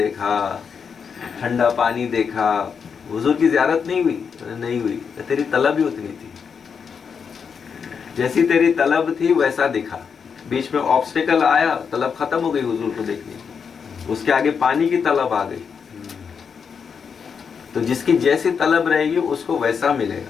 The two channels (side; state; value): right; quieter; 6.3 dB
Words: ٹھنڈا پانی دیکھا. حضور کی زیارت نہیں ہوئی؟ نہیں ہوئی. تیری طلب ہی اتنی تھی، جیسی تیری طلب تھی ویسا دکھا. بیچ میں آبسٹیکل آیا، طلب ختم ہو گئی حضور کو دیکھنے کی، اس کے آگے پانی کی طلب آ گئی. تو جس کی جیسی طلب رہے گی اس کو ویسا ملے